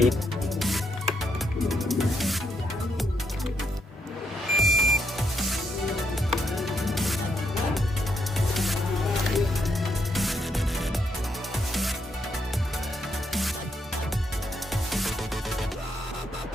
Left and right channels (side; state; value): both; normal; correlation 0.77